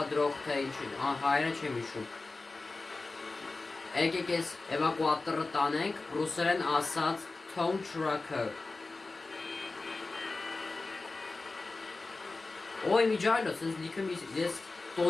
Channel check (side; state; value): right; quieter; 3.5 dB